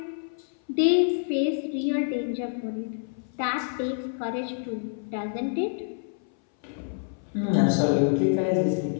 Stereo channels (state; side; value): silent; right; 59 dB below the other